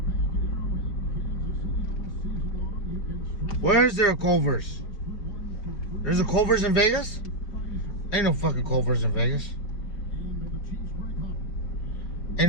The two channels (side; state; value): right; late; 4.7 ms